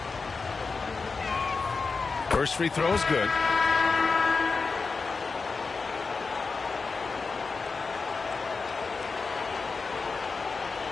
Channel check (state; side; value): quieter; right; 4.5 dB